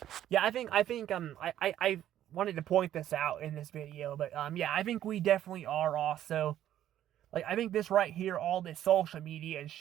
yeah, I wanted to point this out in this video, but yeah, I think we definitely are also, like, I think this right here, all this social media and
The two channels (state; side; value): quieter; left; 11.8 dB